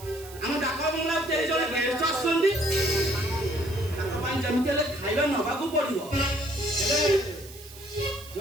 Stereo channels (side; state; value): right; noise; hiss, 17 dB below the sound